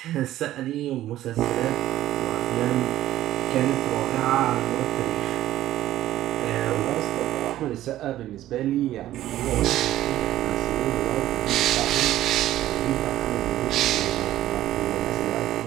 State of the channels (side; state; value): left; quieter; 13.9 dB